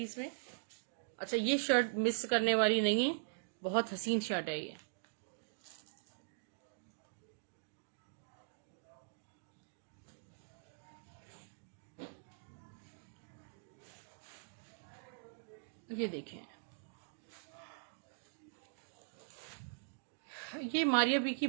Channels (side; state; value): left; silent; digital silence